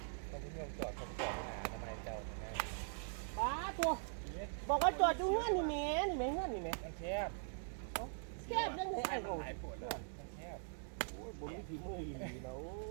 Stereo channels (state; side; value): silent; left; digital silence